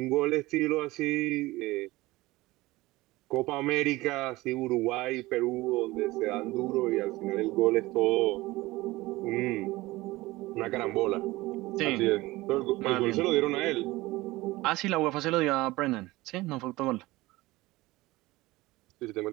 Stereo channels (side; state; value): left; quieter; 19.6 dB